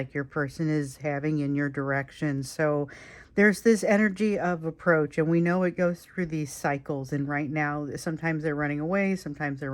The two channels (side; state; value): both; identical; correlation 1.00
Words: your person is having in your direction. So there's this energy of approach, and we know it goes through these cycles. And right now, sometimes they're running away, sometimes they're